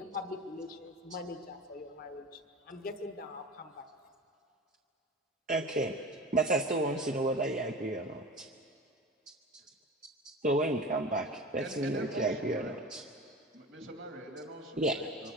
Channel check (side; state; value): both; normal; correlation 0.33